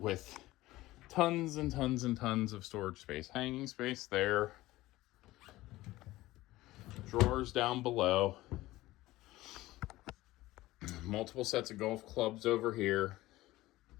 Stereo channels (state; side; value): quieter; right; 17.6 dB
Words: tons and tons and tons of storage space. Hanging space there. Drawers down below. Multiple sets of golf clubs over here.